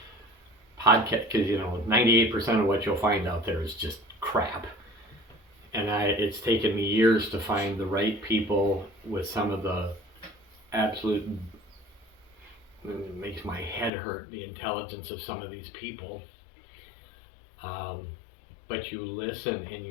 podcast, because you know 98% of what you'll find out there is just crap. And it's taken me years to find the right people with some of the absolute, it makes my head hurt, the intelligence of some of these people. But you listen and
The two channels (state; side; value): drops out; right; at 13.9 s